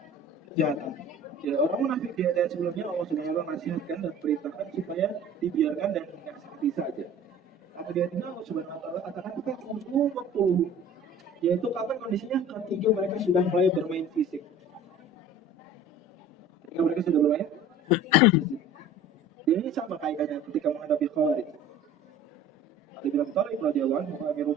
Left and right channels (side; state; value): both; normal; correlation 0.44